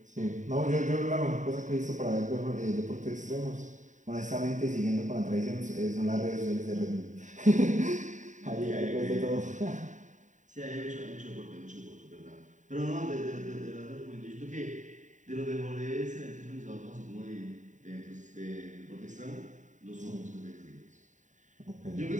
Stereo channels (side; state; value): left; late; 0.36 ms